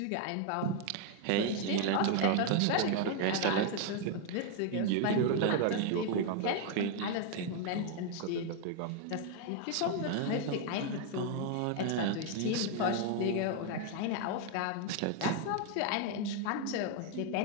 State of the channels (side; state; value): both; different; correlation 0.01